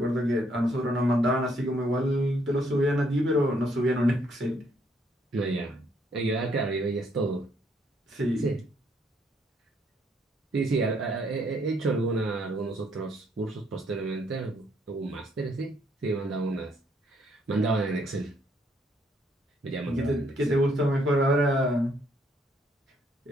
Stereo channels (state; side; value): normal; both; correlation 0.70